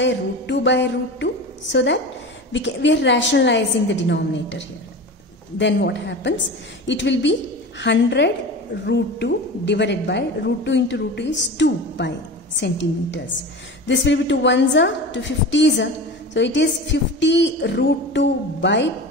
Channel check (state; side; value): normal; both; correlation 0.31